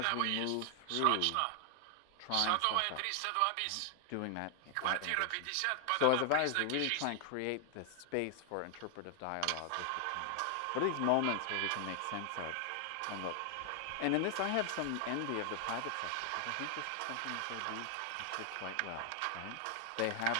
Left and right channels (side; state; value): both; different; correlation 0.00